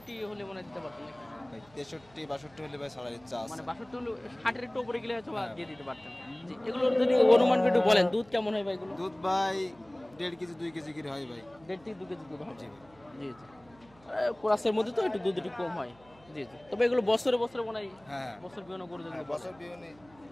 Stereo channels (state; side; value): noise; right; hum, 27 dB below the sound